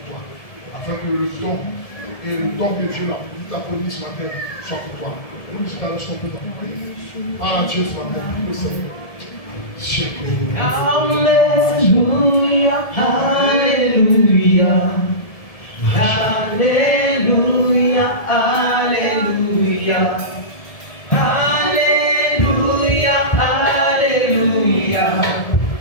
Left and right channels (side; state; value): right; late; 1.7 ms